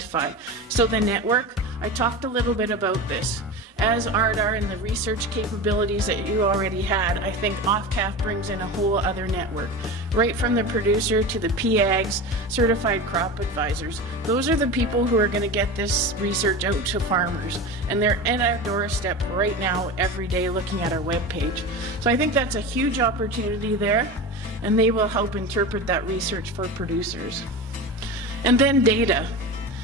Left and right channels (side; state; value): both; normal; correlation 0.27